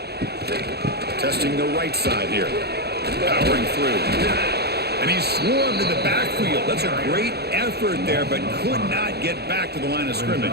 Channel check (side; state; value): left; late; 0.47 ms